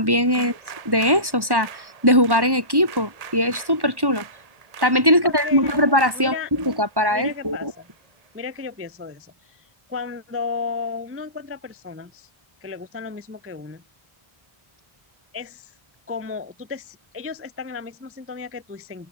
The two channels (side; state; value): left; late; 1.1 ms